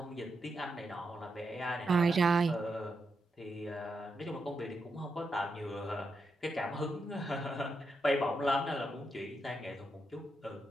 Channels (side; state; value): both; normal; correlation 0.84